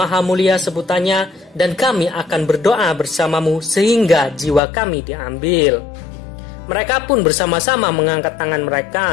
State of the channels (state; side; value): drops out; right; at 4.6 s